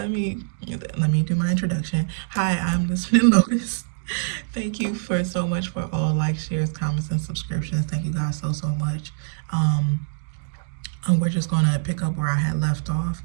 me do my introduction. Hi, I'm Listening Lotus. Thank you for so much for all likes, shares, comments, and subscriptions. Thank you guys so much. And we're just going to pick up where I had left off,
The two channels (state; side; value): silent; left; digital silence